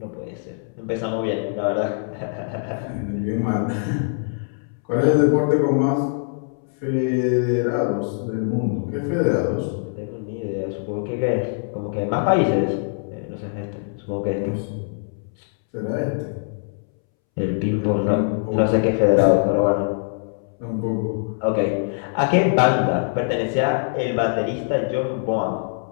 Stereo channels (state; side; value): silent; right; 63 dB below the other